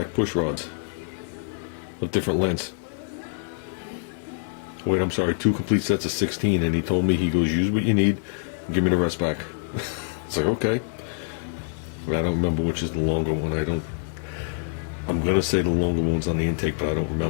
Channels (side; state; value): right; silent; digital silence